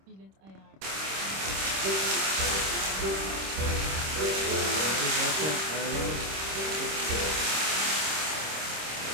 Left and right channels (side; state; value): left; late; 26 ms